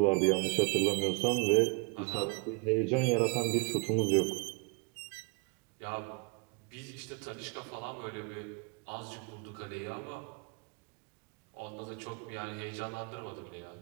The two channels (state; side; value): quieter; left; 31.3 dB